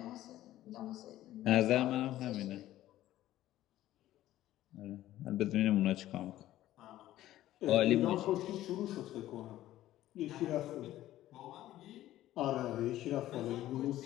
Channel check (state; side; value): quieter; right; 14.2 dB